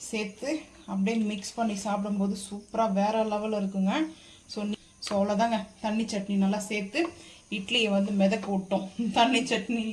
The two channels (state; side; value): identical; both; correlation 1.00